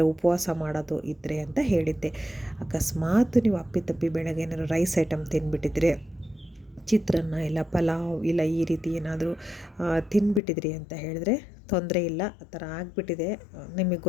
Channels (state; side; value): drops out; right; at 10.4 s